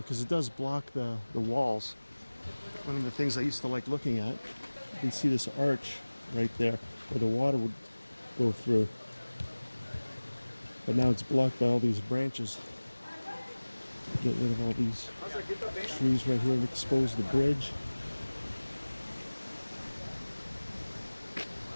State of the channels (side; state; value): both; inverted; correlation -1.00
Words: because it does block the walls. One of the things I used to like looking at, you can see this arch right there where the water would go through. But now it's blocked by all these branches. Get rid of all these trees right here and expose the bridge.